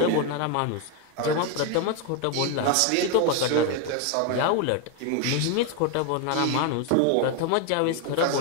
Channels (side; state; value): both; different; correlation 0.01